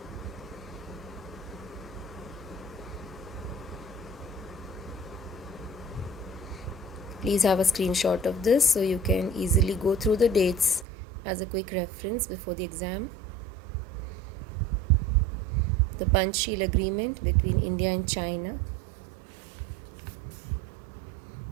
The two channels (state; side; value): drops out; left; at 10.9 s